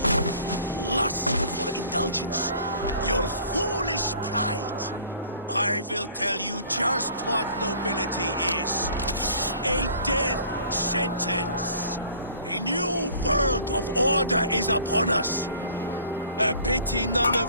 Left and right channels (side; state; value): both; inverted; correlation -0.50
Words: lust for indulgence, your foolish pride, I will tell you just what nobility is. A death sentence. A new world of order is upon us. A pity none of